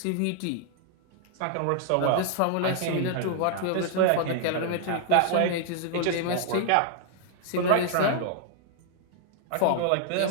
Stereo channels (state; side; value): different; both; correlation -0.01